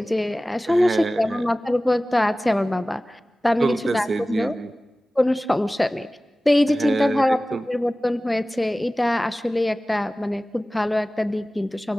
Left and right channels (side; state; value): both; normal; correlation 0.97